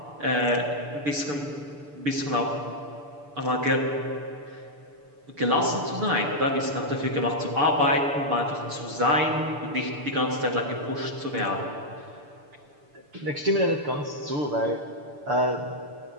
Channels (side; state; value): left; late; 6.9 ms